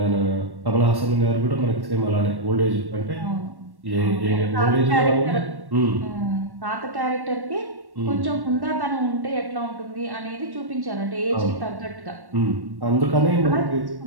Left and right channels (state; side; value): late; left; 1.1 ms